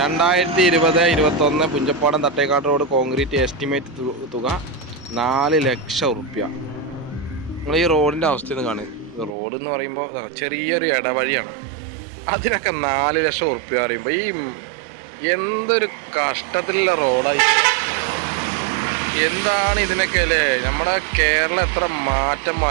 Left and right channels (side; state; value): left; drops out; at 9.3 s